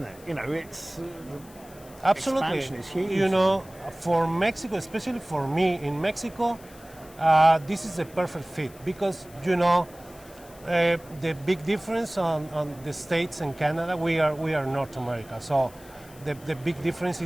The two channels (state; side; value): noise; left; hiss, 23 dB below the sound